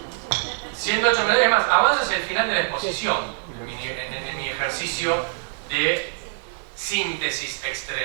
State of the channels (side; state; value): left; silent; 63 dB below the other